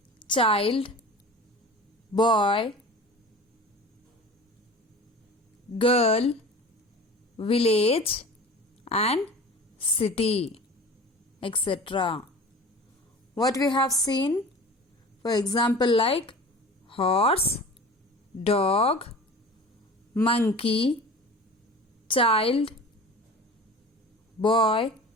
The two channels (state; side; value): normal; both; correlation 0.38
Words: child, boy, girl, village and city, etc. What we have seen? For example, like horse, dog, monkey, child, boy,